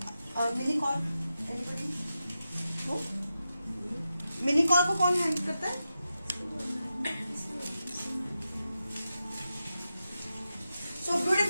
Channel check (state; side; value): inverted; both; correlation -0.90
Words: मिनीकॉर्न एनीबडी? मिनीकॉर्न को कौन हैंडल करता है? सो